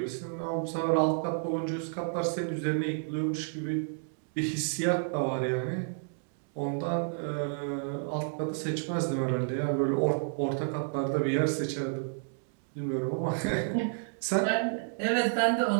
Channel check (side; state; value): left; silent; digital silence